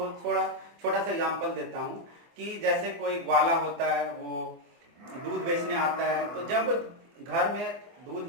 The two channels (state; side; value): late; left; 24 ms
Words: छोटा सा एग्जांपल देता हूँ कि जैसे कोई ग्वाला होता है, वो दूध बेचने आता है, तो जब घर में दूध